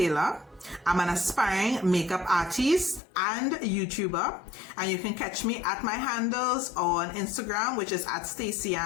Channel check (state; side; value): drops out; right; at 3.0 s